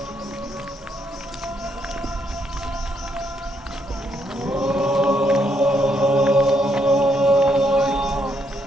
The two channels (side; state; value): both; normal; correlation 0.75